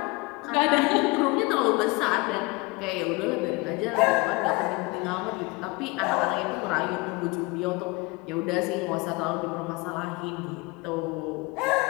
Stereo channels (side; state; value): right; quieter; 25.1 dB